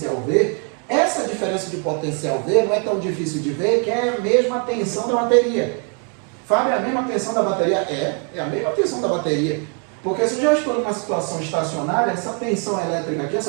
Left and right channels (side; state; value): left; quieter; 39.8 dB